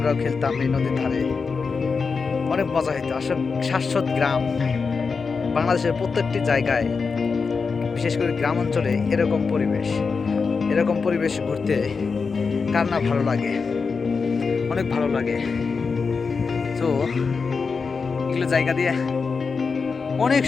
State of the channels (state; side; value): quieter; right; 5.0 dB